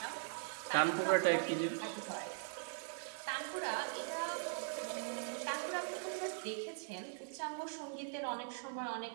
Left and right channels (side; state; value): left; silent; 50 dB below the other